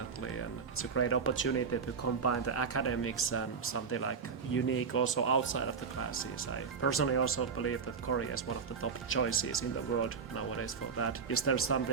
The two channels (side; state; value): left; quieter; 5.7 dB